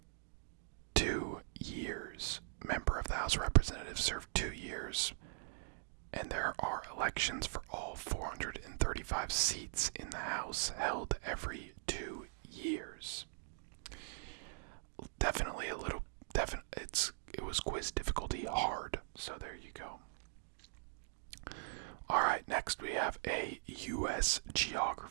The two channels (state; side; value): silent; left; digital silence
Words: 2 years. Member of the House of Representatives serve 2 years. And there are elections for all 435 seats in the House held every 2 years. Definitely it was quiz difficulty hard, so there you go. Alright, next we have a U.S.